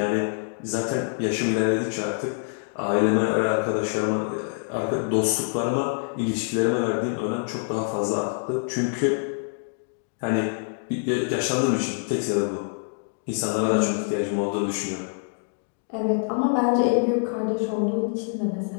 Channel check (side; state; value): right; silent; digital silence